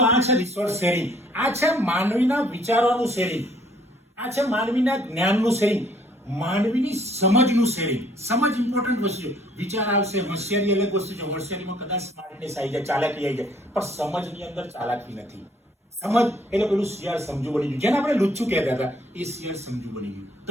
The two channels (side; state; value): both; normal; correlation 0.62